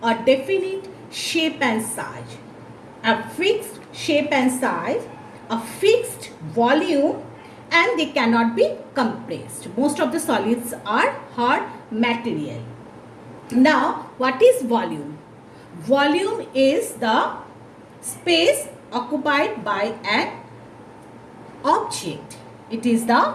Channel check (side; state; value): both; identical; correlation 1.00